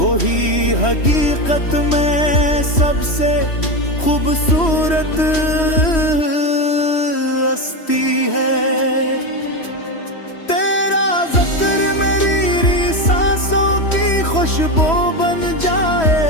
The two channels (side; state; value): right; late; 3.1 ms